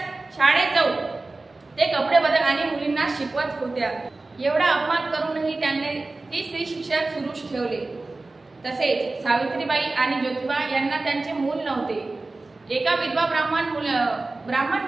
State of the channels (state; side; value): quieter; left; 3.3 dB